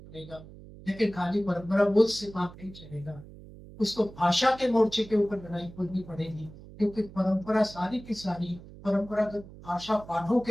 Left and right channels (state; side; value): noise; right; hum, 18 dB below the sound